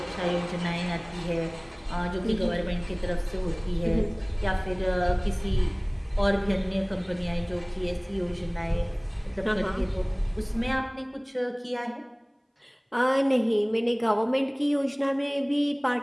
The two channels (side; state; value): both; identical; correlation 1.00